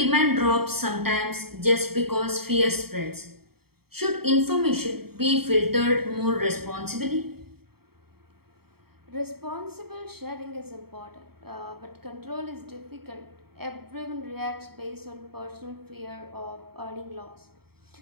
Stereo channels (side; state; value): left; late; 0.95 ms